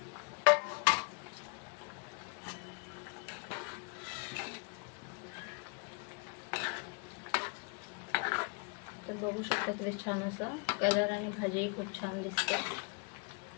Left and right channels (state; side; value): quieter; right; 35.5 dB